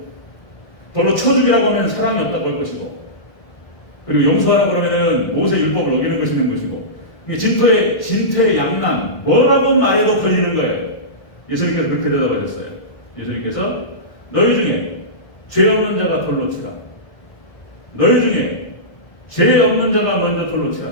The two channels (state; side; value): late; right; 1.5 ms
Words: 돌로 쳐 죽이라고 하면 사랑이 없다고 할 것이고, 그리고 용서하라고 그러면은 모세 율법을 어기는 것이는 것이고, 이게 진토의 양난 뭐라고 말해도 걸리는 거예요. 예수님께서 그렇게 대답하셨어요. 예수님께서 너희 중에 죄 없는 자가 돌로 치라. 너희 중에 죄 없는 자가 먼저 돌로 치라.